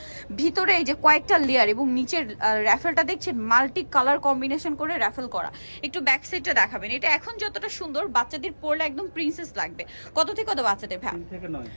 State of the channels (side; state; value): both; inverted; correlation -1.00